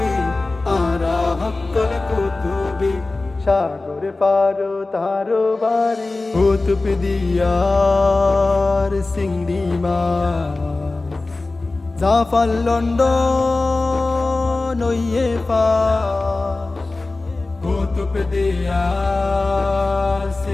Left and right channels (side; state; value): right; quieter; 3.3 dB